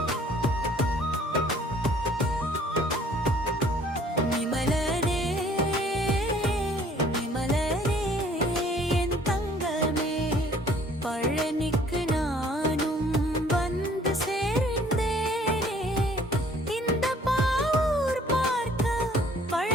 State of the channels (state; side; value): normal; both; correlation 0.57